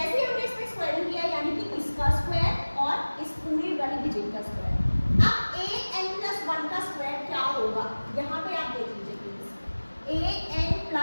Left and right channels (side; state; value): both; inverted; correlation -1.00